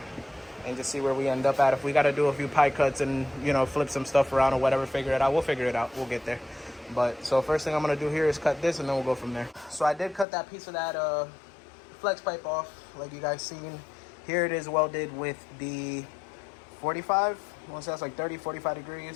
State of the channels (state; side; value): drops out; right; at 10.2 s